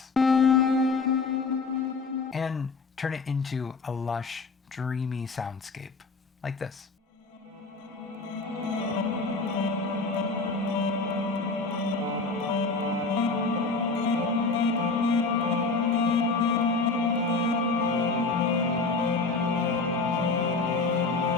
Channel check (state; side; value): quieter; right; 4.0 dB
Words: and turn it into a lush, dreamy soundscape like this.